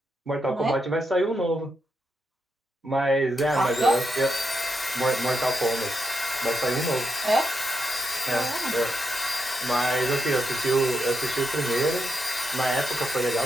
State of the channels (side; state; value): both; normal; correlation 0.84